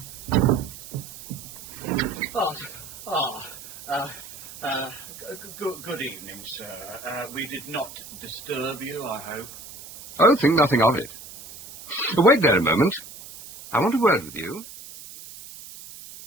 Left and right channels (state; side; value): noise; right; hiss, 15 dB below the sound